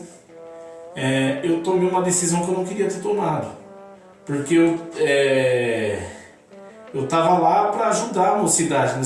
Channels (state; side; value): identical; both; correlation 1.00